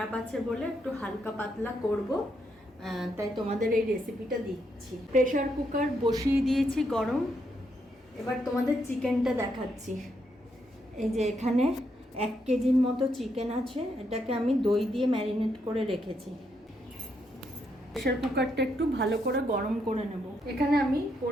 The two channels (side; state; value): both; normal; correlation 0.78